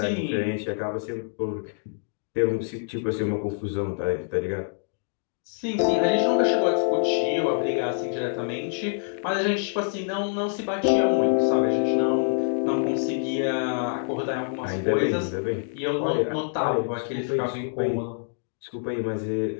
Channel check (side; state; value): right; silent; digital silence